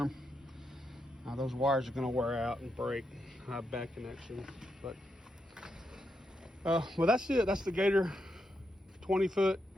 Those wires are going to wear out and break. I have bad connection. But well, that's it. That's the Gator 20-foot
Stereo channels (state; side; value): normal; both; correlation 0.83